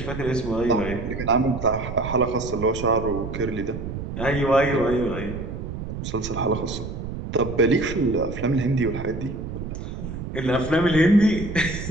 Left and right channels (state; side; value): noise; right; rumble, 7 dB below the sound